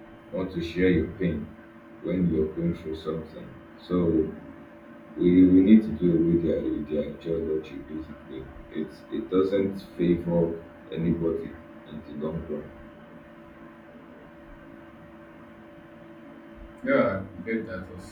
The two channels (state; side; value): identical; both; correlation 1.00